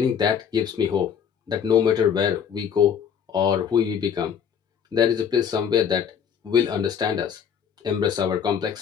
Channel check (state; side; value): quieter; right; 7.7 dB